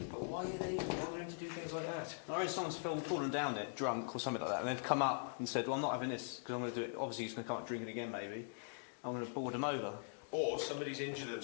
But why are they bothering to do things like that? I reckon someone's fallen down it, drunk or something like that, and they've come up and said, "Well, I'm not having this because I'm going to do it." Obviously, he's going to come up drinking again, maybe. I'm going to board them over. Or somebody's injured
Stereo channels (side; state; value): right; silent; digital silence